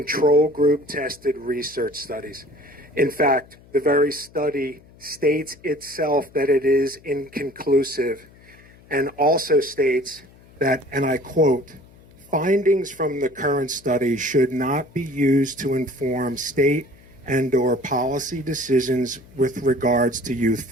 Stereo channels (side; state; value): left; noise; hum, 25 dB below the sound